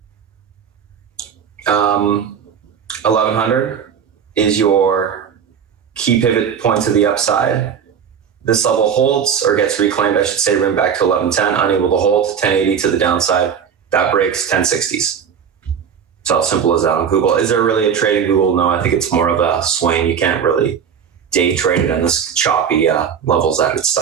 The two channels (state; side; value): quieter; left; 7.5 dB